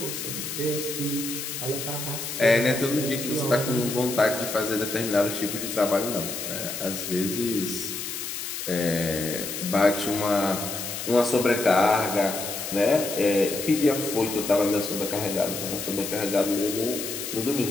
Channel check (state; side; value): noise; left; hiss, 6 dB below the sound